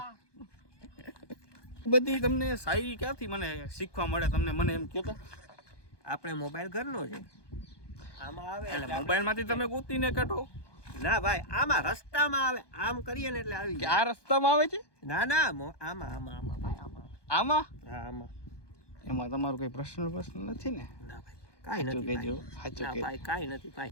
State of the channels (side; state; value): right; late; 1.2 ms